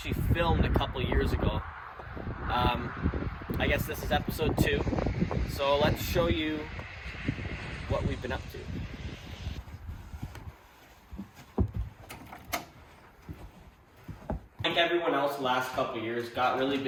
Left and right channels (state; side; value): identical; both; correlation 1.00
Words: filmed a couple years ago. I guess this is episode 2. So let's show you what we've been up to. Like everyone else the last couple of years, got really